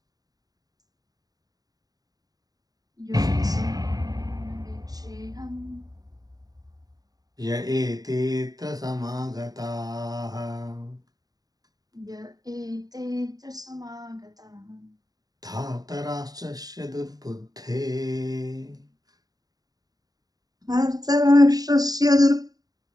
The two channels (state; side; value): late; left; 0.18 ms